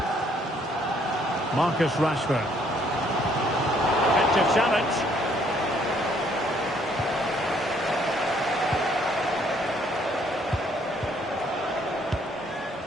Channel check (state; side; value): normal; both; correlation 0.65